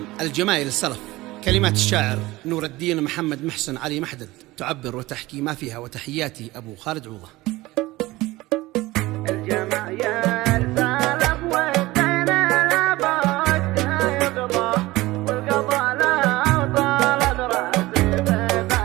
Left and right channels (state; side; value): quieter; left; 19.2 dB